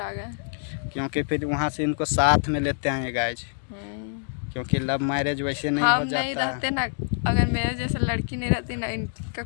आ गए, क्योंकि फिर वहाँ से इनको साथ में लेते आए गाइज, क्योंकि लव मैरिज वैसे नहीं हो जाता। नहीं रहते ना, अगर मेरे जैसे लड़की नहीं रहती ना, इनका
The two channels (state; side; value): silent; right; digital silence